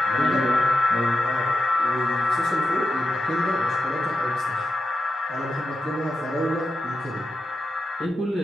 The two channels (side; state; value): both; normal; correlation 0.89